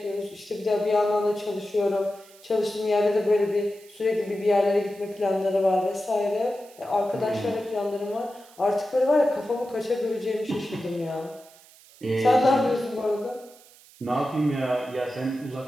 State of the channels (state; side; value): noise; right; hiss, 24 dB below the sound